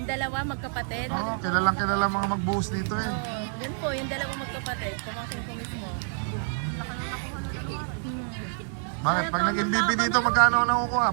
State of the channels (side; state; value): left; silent; 60 dB below the other